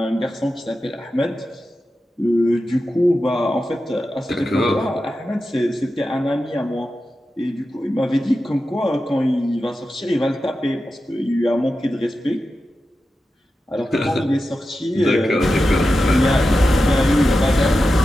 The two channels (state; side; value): normal; both; correlation 0.91